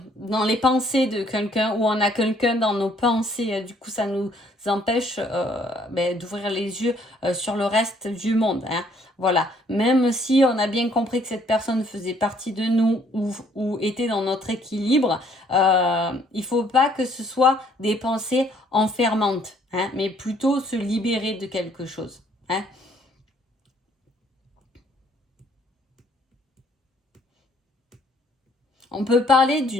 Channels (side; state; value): both; normal; correlation 0.63